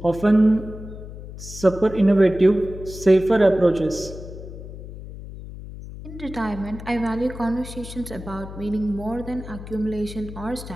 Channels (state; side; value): noise; left; hum, 12 dB below the sound